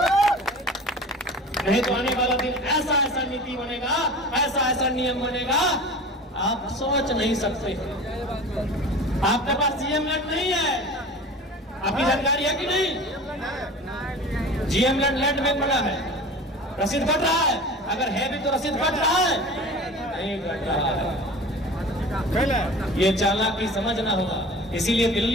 नहीं तो आने वाला दिन ऐसा ऐसा नीति बनेगा, ऐसा ऐसा नियम बनेगा, आप सोच नहीं सकते। आपके पास जीएम लैंड नहीं है, आपकी जानकारी है कि नहीं? जीएम लैंड में पड़ा है, रसीद कट रहा है। अगर है भी तो रसीद कट रहा है, नहीं कट रहा है। ये चालाकी समझना होगा। इसीलिए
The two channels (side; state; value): both; normal; correlation 0.38